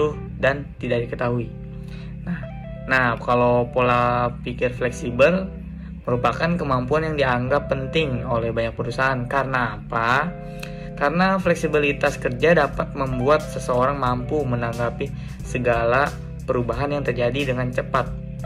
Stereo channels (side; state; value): both; identical; correlation 1.00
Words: dan tidak diketahui. Nah, kalau pola pikir fleksibel merupakan kemampuan yang dianggap penting oleh banyak perusahaan. Karena apa? Karena fleksibilitas kerja dapat membuat seseorang mampu menanggapi segala perubahan yang terjadi dengan cepat.